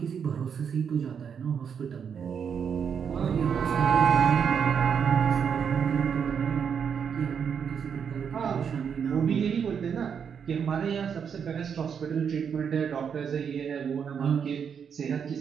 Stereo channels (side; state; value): left; quieter; 7.2 dB